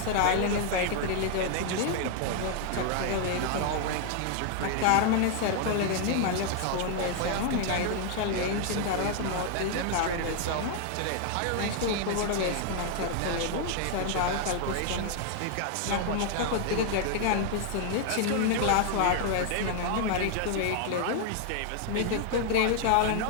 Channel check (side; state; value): both; different; correlation 0.00